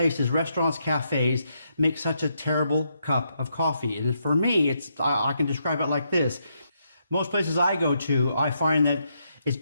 restaurants, cafes, make such a terrible cup of coffee? And for me, I can describe it like this. Most places I go to, I find that it's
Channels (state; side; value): inverted; both; correlation -0.78